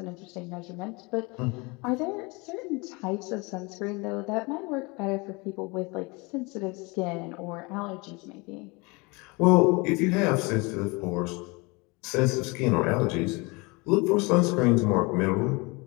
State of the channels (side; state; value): right; quieter; 27.1 dB